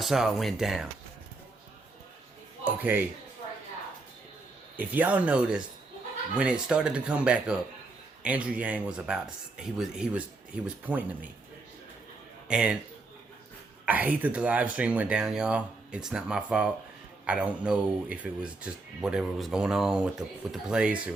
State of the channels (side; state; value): left; quieter; 3.4 dB